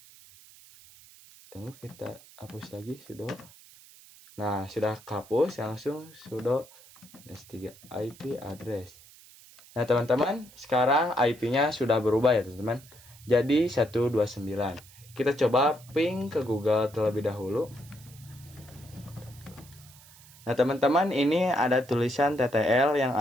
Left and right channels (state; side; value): noise; right; hiss, 23 dB below the sound